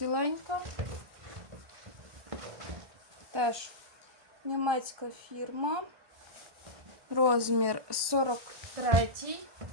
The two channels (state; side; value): late; left; 1.2 ms